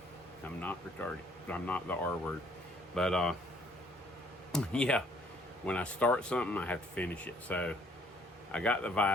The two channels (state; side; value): normal; both; correlation 0.62